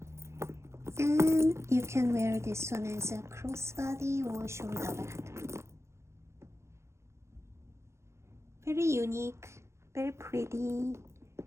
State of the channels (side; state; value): left; late; 0.13 ms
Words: And you can wear this one as a crossbody or shoulder bag. Very unique, very pretty.